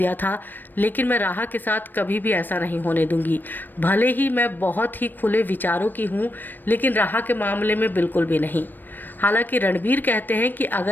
था, लेकिन मैं राहा के साथ कभी भी ऐसा नहीं होने दूंगी। भले ही मैं बहुत ही खुले विचारों की हूँ, लेकिन राहा के मामले में बिल्कुल भी नहीं। हालांकि रणबीर कहते हैं कि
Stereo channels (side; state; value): right; late; 0.092 ms